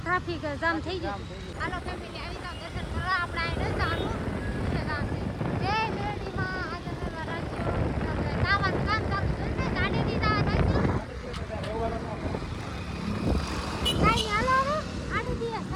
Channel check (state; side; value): identical; both; correlation 1.00